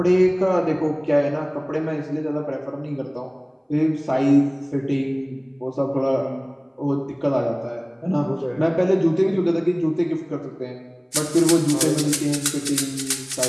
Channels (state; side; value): identical; both; correlation 1.00